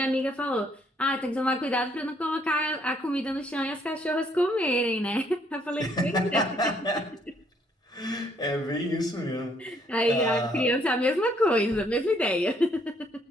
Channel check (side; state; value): both; normal; correlation 0.67